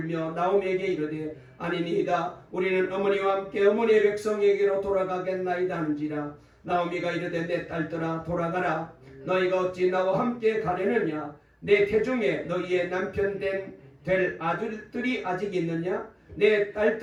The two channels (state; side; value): identical; both; correlation 1.00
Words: 나오미에게 이르되 아니니이다. 우리는 어머니와 함께 어머니의 백성에게로 돌아가겠나이다 한지라. 나오미가 이르되 내 딸들아 돌아가라. 너희가 어찌 나와 함께 가려느냐? 내 태중에 너희의 남편 될 아들들이 아직 있느냐? 내